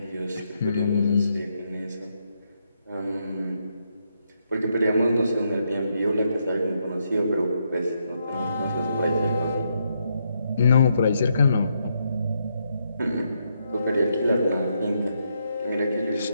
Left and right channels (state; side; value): inverted; both; correlation -0.79